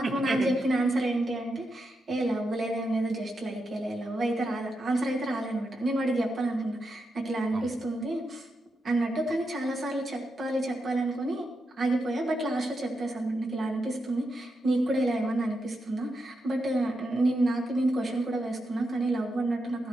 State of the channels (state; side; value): normal; both; correlation 0.85